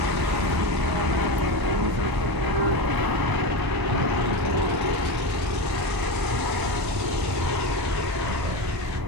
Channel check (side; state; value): left; late; 1.0 ms